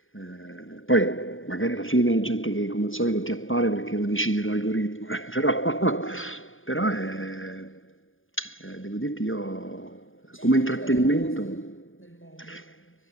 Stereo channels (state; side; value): late; right; 0.59 ms